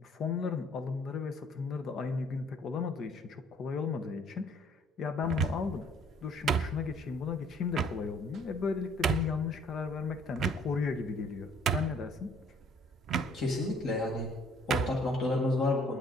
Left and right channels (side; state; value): both; normal; correlation 0.59